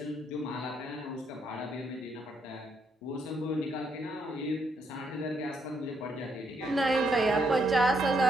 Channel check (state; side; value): normal; both; correlation 0.75